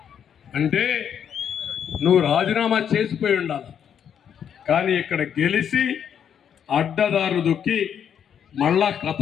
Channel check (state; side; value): quieter; right; 8.5 dB